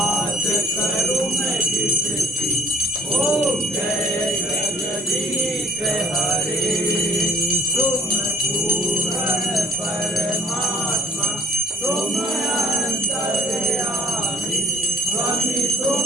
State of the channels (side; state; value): both; normal; correlation 0.51